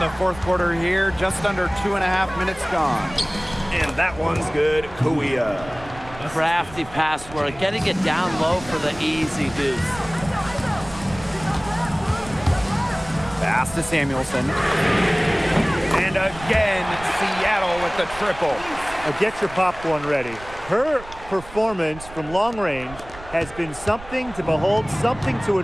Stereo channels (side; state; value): right; noise; rumble, 17 dB below the sound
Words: fourth quarter here, just under 2.5 minutes gone. And that one's good. Kuia. Crafty pass work, getting it down low for the easy deuce. Pass to Samuelson. And again, Seattle with the triple. Now get your popcorn ready. Her performance from long range has been something to behold, something to